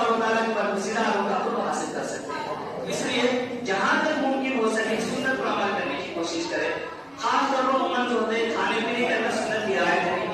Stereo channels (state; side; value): identical; both; correlation 1.00